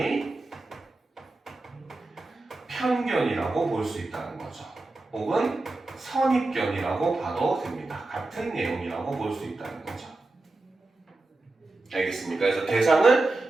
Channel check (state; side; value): quieter; left; 3.1 dB